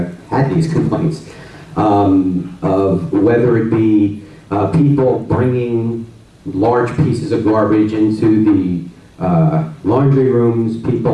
had these complaints, of whether it be people bringing large pieces of garbage into the laundry rooms,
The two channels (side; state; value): both; identical; correlation 1.00